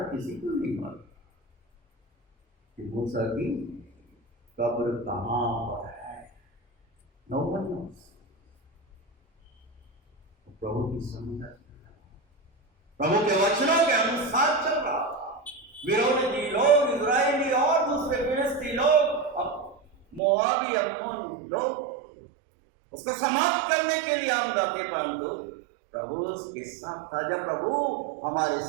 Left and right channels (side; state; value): left; drops out; at 20.2 s